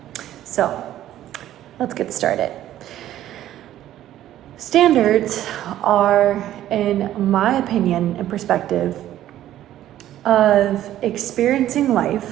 So, let's get started. Standards are, in my opinion and perspective, of experiencing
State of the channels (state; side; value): quieter; left; 12.8 dB